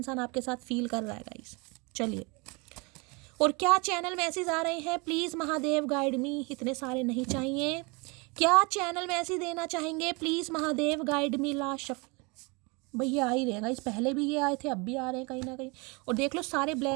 आपके साथ फील कर रहा है गाइस। चलिए, और क्या चैनल मैसेज आ रहे हैं, प्लीज़ महादेव गाइड मी। इतने सारे नहीं चाहिए। क्या चैनल मैसेज देना चाहेंगे, please Mahadev guide me. Last shuffle भैया आ ही रहेगा, इस पहले भी ये आए थे, अब भी आ रहे हैं कहीं ना कहीं। और देख लो सारे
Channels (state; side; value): quieter; left; 28.9 dB